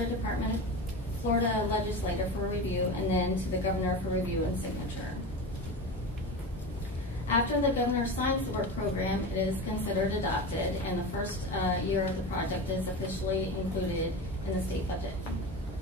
legislator for review and then to the governor for review and signature. After the governor signs the work program, it is considered adopted and the first year of the project is officially included in the state budget.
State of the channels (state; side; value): normal; both; correlation 0.26